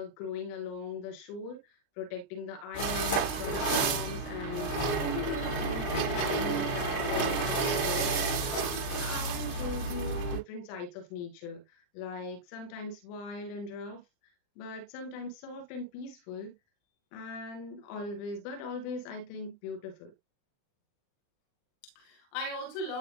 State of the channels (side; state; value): right; late; 38 ms